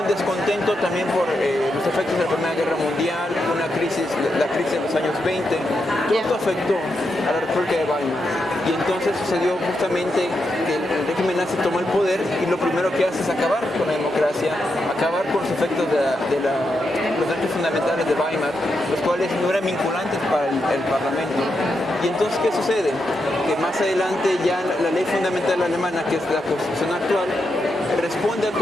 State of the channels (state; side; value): normal; both; correlation 0.84